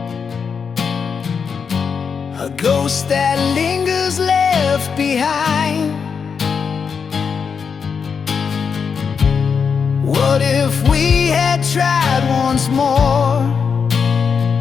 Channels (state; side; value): quieter; right; 6.1 dB